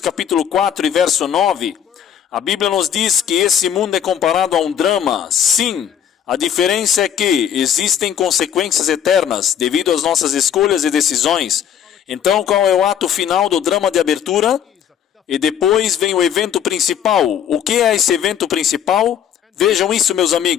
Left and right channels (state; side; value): quieter; right; 9.1 dB